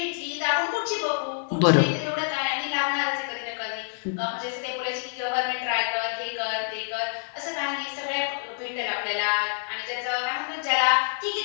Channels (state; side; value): silent; right; digital silence